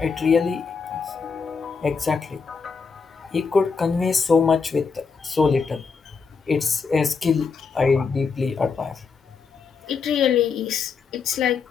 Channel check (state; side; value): quieter; right; 5.3 dB